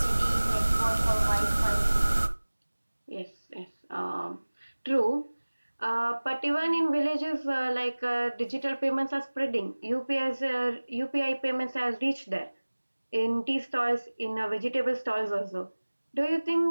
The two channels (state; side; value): inverted; both; correlation -1.00